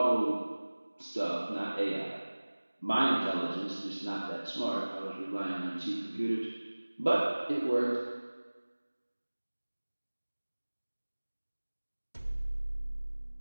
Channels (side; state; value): both; inverted; correlation -1.00